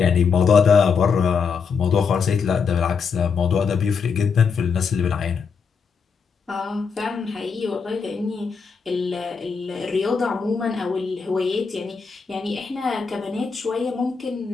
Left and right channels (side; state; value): right; quieter; 5.7 dB